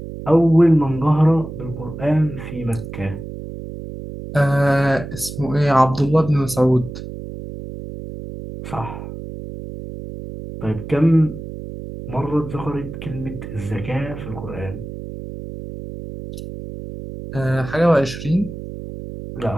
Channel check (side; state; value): right; noise; hum, 10 dB below the sound